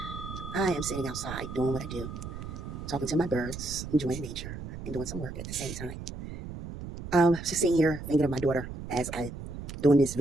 I am sitting outside doing what I do, talking to my birds, enjoying nature, and doing some work at the same time. Just sitting here thinking of my daughter as I doing these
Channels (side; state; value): right; noise; rumble, 9 dB below the sound